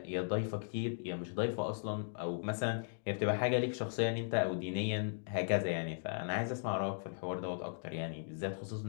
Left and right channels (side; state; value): right; silent; digital silence